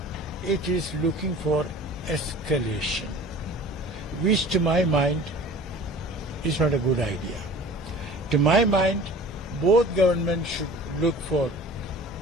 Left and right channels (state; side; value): normal; both; correlation 0.43